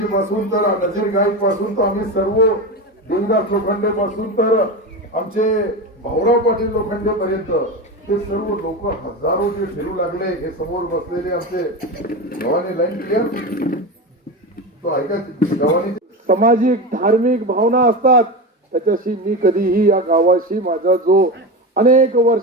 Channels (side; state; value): both; normal; correlation 0.21